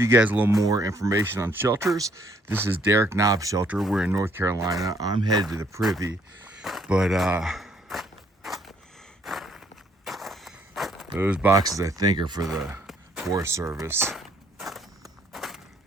you guys a little more information on shelters. This is Derek Knobb's shelter. We're in North Carolina. I'm headed to the privy, but those boxes I think are for the Forest Service.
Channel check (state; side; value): normal; both; correlation 0.66